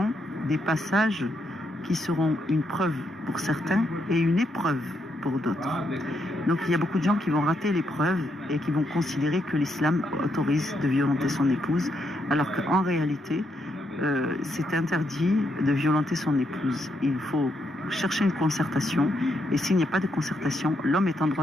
des passages qui seront une preuve pour certains et une épreuve pour d'autres. Donc il y a beaucoup de gens qui vont rater l'épreuve et qui vont considérer que l'islam autorise de violenter son épouse, alors qu'en réalité, c'est interdit de violenter son épouse. Il faut chercher une concertation, et s'il n'y a pas de concertation, l'homme est en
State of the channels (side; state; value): both; normal; correlation 0.78